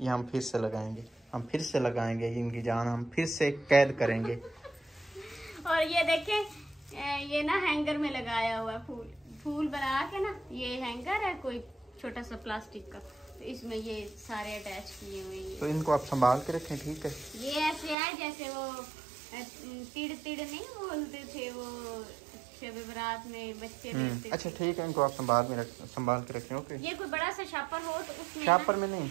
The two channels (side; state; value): left; drops out; at 17.9 s